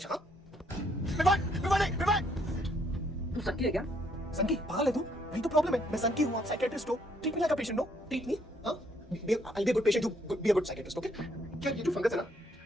हाँ विवान, विवान नहीं, विवान। तू सच्ची है क्या? संकी, पागल है तू? वही तो प्रॉब्लम है। मैं संकी हूँ, आप साइकियाट्रिस्ट हो। Treat me like a patient, no? Treat me, हाँ? I'll be a good patient, you be a good psychiatrist, okay? क्या ये जो फंगस है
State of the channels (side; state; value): both; normal; correlation 0.69